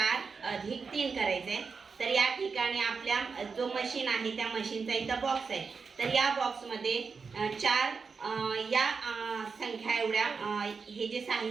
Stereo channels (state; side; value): quieter; left; 5.2 dB